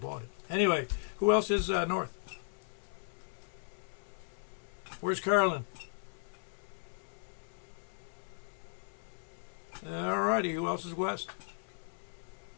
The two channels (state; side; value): silent; right; 53 dB below the other